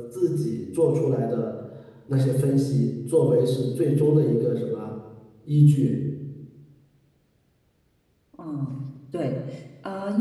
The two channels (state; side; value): identical; both; correlation 1.00